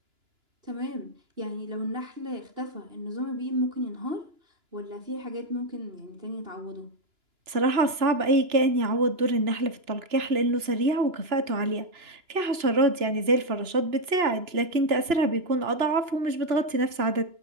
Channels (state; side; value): late; left; 2.9 ms